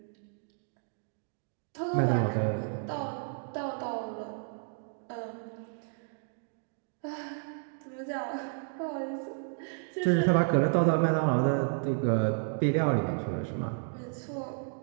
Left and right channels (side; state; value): left; silent; 57 dB below the other